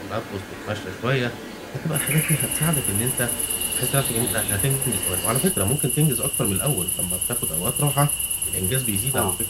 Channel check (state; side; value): identical; both; correlation 1.00